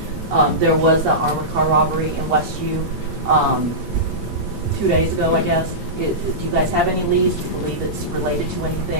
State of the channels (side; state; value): both; normal; correlation -0.16